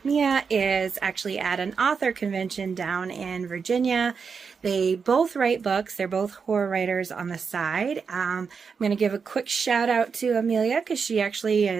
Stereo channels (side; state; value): left; quieter; 5.7 dB